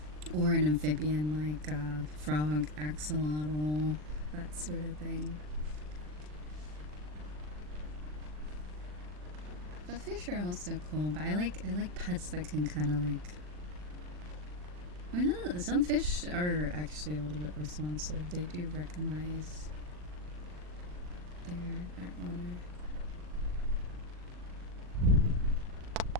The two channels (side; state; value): left; late; 40 ms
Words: Or an amphibian like frog, axolotl, that sort of thing. But fish are also cool, but I like pets that can kind of like. I mean, some fish are actually a little bit responsive. They do recognize their owner.